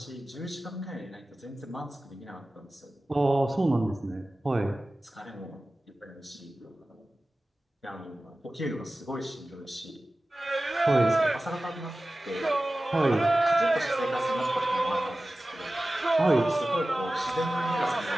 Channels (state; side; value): normal; both; correlation 0.96